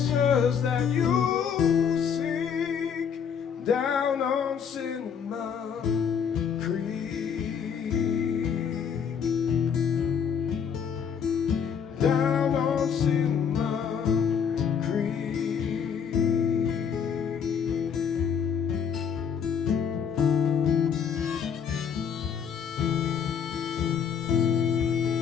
that you seek down on Cinnamon Creek, down on Cinnamon Creek.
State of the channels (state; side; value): quieter; right; 7.3 dB